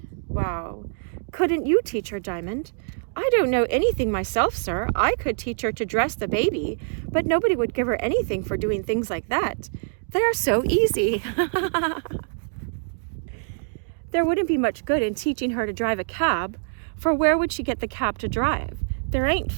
Wow. Couldn't you teach her, Diamond? I don't know anything myself, sir. I could teach her to dress the baby, but nobody would give her anything for doing things like that. They are so easy. There wouldn't be much good in teaching her to drive a cab, for where would she get the cab to drive? There ain't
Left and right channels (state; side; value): silent; left; digital silence